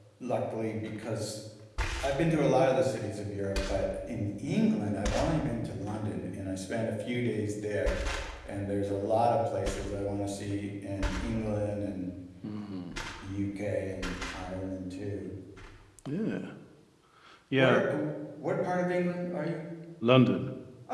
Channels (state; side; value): identical; both; correlation 1.00